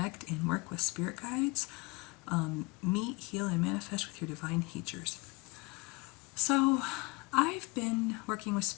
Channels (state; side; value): quieter; right; 25.9 dB